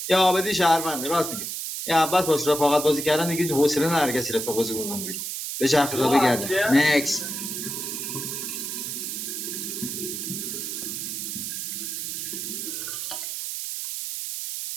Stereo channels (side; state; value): right; noise; hiss, 4 dB below the sound